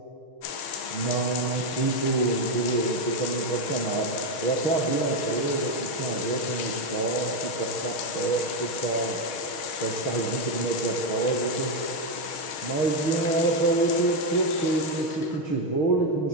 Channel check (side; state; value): right; late; 6.4 ms